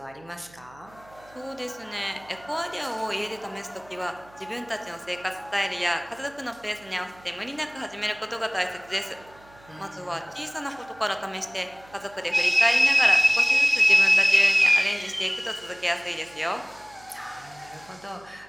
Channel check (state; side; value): noise; right; hum, 26 dB below the sound